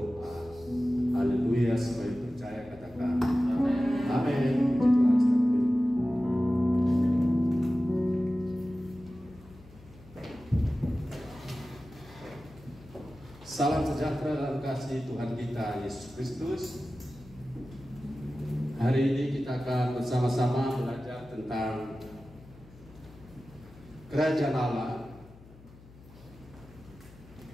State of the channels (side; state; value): left; noise; hum, 22 dB below the sound